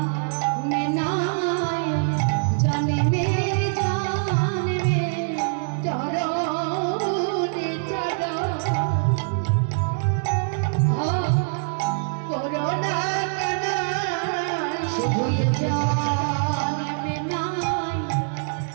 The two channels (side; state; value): left; silent; digital silence